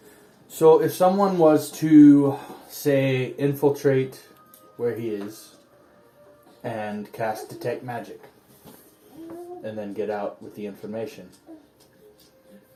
So if someone was to, say, infiltrate where he is and cast Detect Magic and then get out with the information.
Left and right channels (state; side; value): identical; both; correlation 1.00